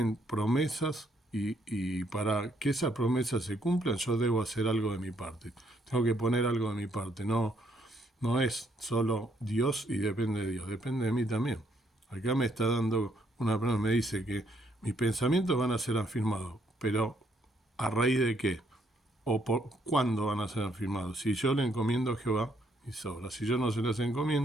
promesas, y para que esas promesas se cumplan yo debo hacer algo de mi parte. Tengo que poner algo de mi parte. No es solo Dios y depende de Dios, depende de mí también. Acá me está dando una persona me dice que mis pensamientos van a ser afirmados, pero ¿a raíz de qué? ¿O por cuándo van a ser afirmados? Si yo le encomiendo a Jehová, y sobra. Si yo no se las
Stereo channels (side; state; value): both; normal; correlation 0.71